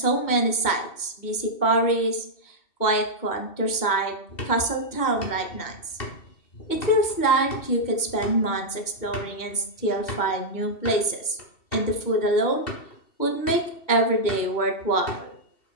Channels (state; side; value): late; right; 2.7 ms